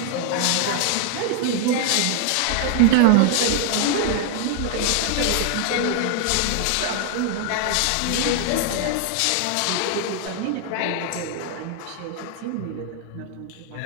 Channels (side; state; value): both; different; correlation 0.00